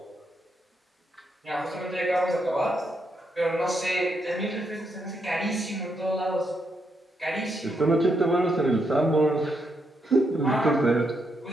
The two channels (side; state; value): both; normal; correlation 0.79